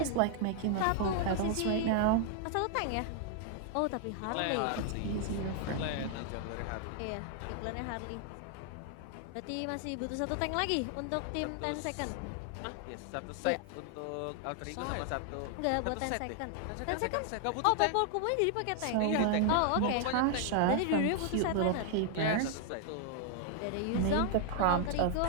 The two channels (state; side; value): different; both; correlation 0.00